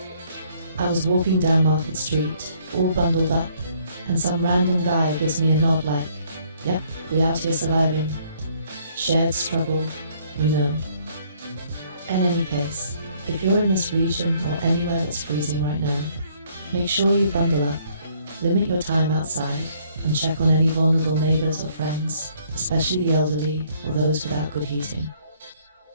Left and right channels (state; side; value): inverted; both; correlation -0.64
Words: I was walking down Market Street, all bundled up, and some random guy gives me a nod like, yep, we out here surviving. Shared struggle, we know. In any case, if you're in this region or anywhere that's freezing right now, make sure you bundle up, limit your time outside, and check on any vulnerable neighbors or friends, especially the elderly or those without good heating.